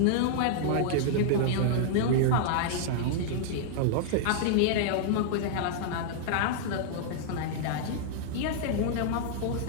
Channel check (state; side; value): different; both; correlation -0.01